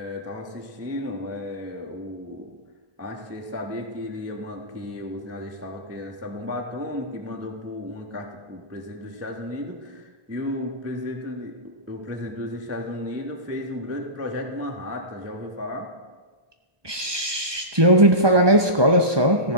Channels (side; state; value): left; late; 1.2 ms